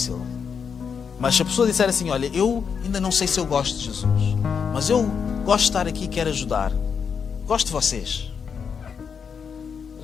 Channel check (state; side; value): quieter; right; 6.5 dB